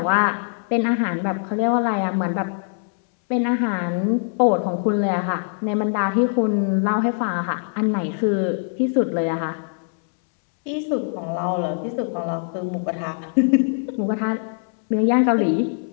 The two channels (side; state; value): right; silent; 64 dB below the other